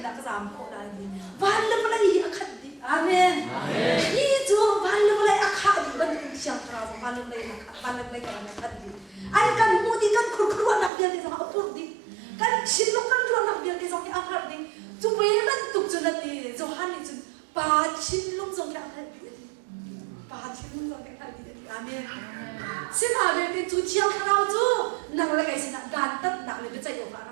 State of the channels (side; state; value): left; drops out; at 10.9 s